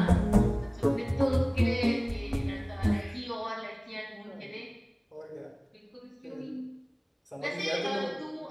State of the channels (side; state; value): both; identical; correlation 1.00